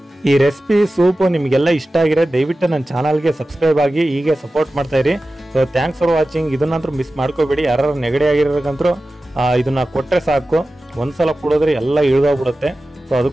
ಈ ರೆಸಿಪಿ ಸೂಪು ನಿಮಗೆಲ್ಲ ಇಷ್ಟ ಆಗಿರೋ ದಯವಿಟ್ಟು ನನ್ನ ಚಾನಲ್ಗೆ ಸಬ್ಸ್ಕ್ರೈಬ್ ಆಗಿ ಹೀಗೆ ಸಪೋರ್ಟ್ ಮಾಡ್ತಾಯಿರಿ. So thanks for watching. ಇದನ್ನಂತೂ ಮಿಸ್ ಮಾಡ್ಕೋಬೇಡಿ. ಯಾರು ನೆಗಡಿ ಆಗಿರೋಕ್ಕಂತೂ ಇದನ್ನು ಕೊಟ್ಟರೆ ಸಾಕು, ಒಂದು ಸಲ ಕುಡಿದ್ರೆ ಎಲ್ಲ ಇಳಿದೋಗ್ಬಿಡುತ್ತೆ. ಸೊ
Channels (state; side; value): normal; both; correlation 0.95